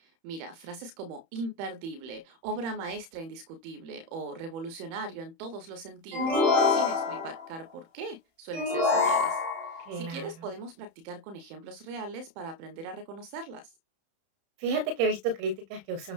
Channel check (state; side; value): late; left; 31 ms